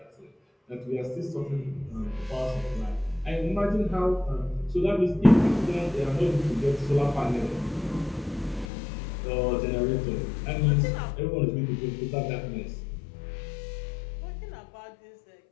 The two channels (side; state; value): right; drops out; at 8.7 s